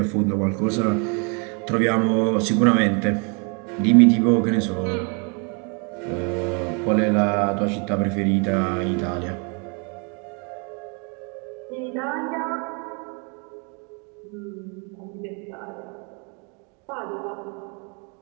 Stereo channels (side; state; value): left; quieter; 35.2 dB